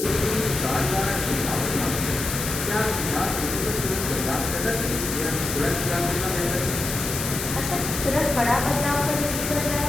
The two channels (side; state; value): left; noise; hiss, 4 dB below the sound